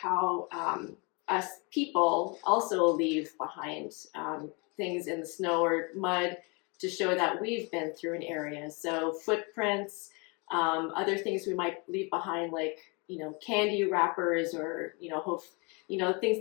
us people also leave behind things in the snow or mud to show that we've been through an area. So footprints, other things we might leave behind, like candy wrappers, or things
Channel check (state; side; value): quieter; right; 30.8 dB